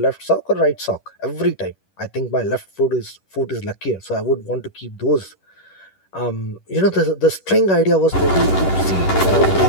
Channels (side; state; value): right; late; 10 ms